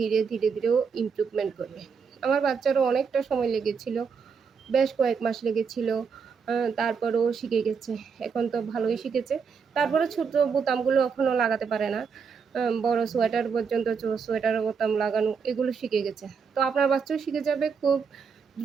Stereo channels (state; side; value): quieter; left; 5.9 dB